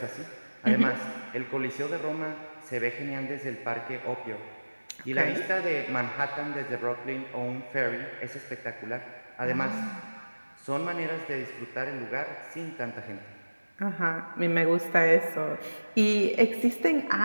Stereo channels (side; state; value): both; inverted; correlation -1.00